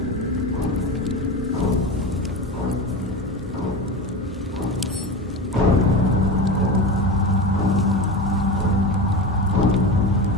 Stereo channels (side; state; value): both; normal; correlation 0.26